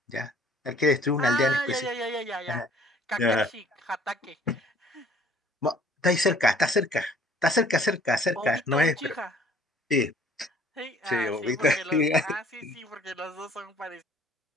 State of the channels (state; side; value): normal; both; correlation 0.56